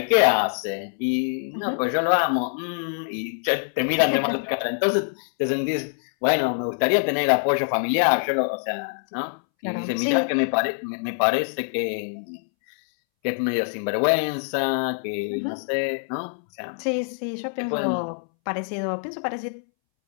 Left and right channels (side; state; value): right; silent; 62 dB below the other